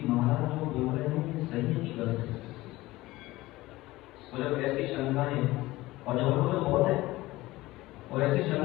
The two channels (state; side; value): quieter; right; 18.5 dB